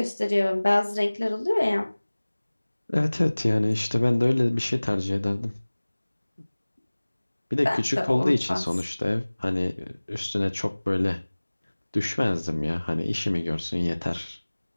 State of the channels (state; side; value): inverted; both; correlation -1.00